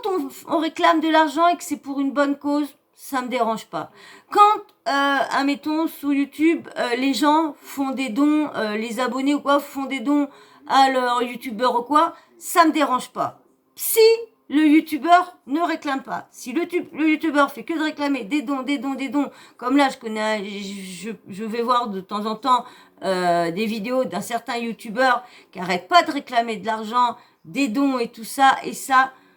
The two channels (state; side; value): identical; both; correlation 1.00